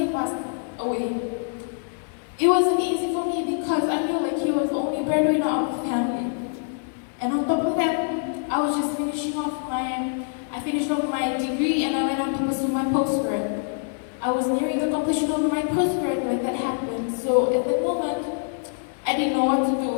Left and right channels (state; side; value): silent; right; digital silence